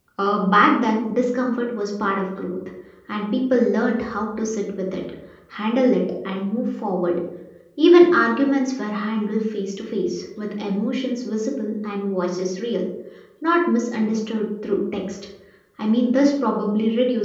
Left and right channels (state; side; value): identical; both; correlation 1.00